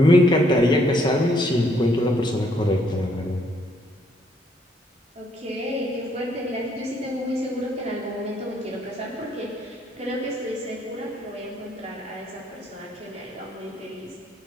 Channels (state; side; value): normal; both; correlation 0.69